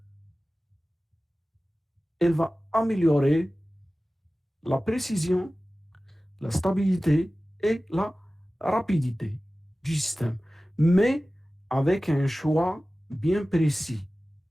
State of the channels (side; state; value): both; normal; correlation 0.96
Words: elle va améliorer la précision, la stabilité et la rapidité du système. Mais avec un choix bien précis.